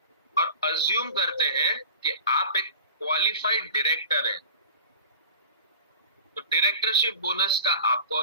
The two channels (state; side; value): inverted; both; correlation -0.40